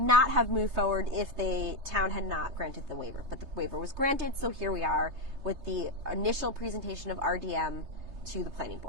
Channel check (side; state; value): left; late; 3.3 ms